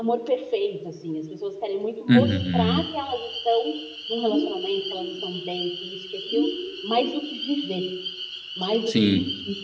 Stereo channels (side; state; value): both; identical; correlation 1.00